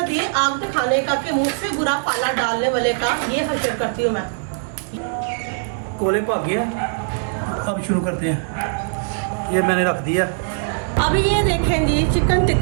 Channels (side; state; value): left; silent; digital silence